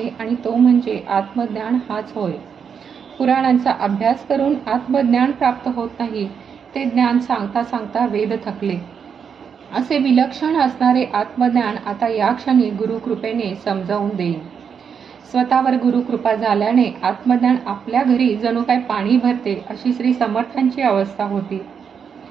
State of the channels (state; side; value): quieter; left; 6.9 dB